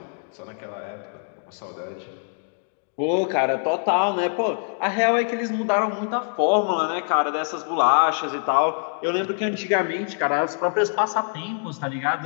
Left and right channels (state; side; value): silent; right; digital silence